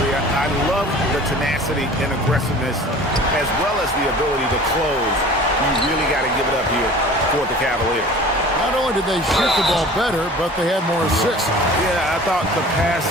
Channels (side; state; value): both; normal; correlation 0.43